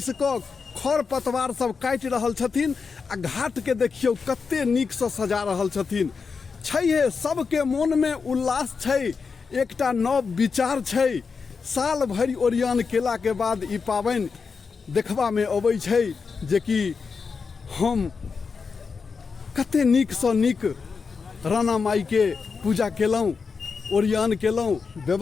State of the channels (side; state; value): right; quieter; 5.2 dB